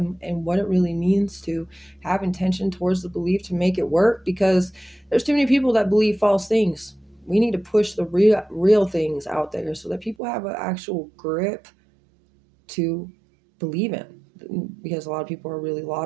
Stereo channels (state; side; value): drops out; left; at 10.2 s